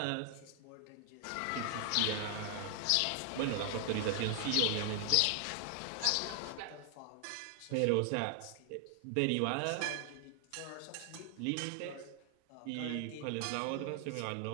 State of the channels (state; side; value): different; both; correlation 0.00